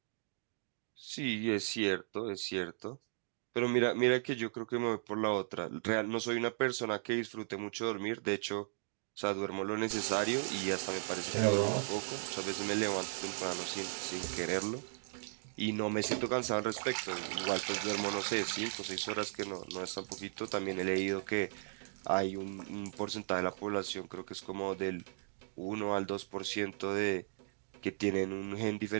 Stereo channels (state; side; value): silent; left; digital silence